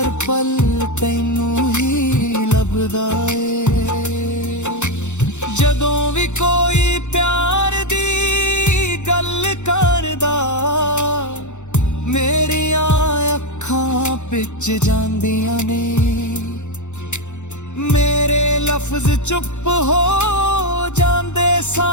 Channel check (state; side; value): late; right; 0.83 ms